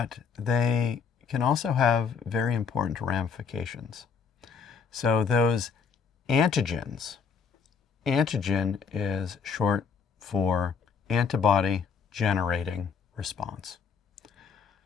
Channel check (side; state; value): right; quieter; 6.2 dB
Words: they can also have very important ramifications. So those antigens, antigen is short for antibody generating response.